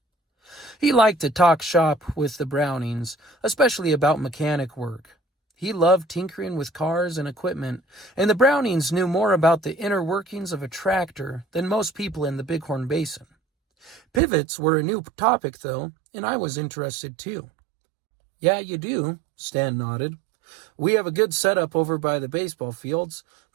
He liked to talk shop with the Brownings, especially about mechanic work. He loved tinkering with cars and equipment, and the Brownings knew more about the inner workings of a tractor than most people in the Bighorn Basin. Pivots were a new topic, though, and I was interested too. "Yeah, you do," Stan nodded. "We have a good setup over by the baseball fields,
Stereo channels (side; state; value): left; drops out; at 14.2 s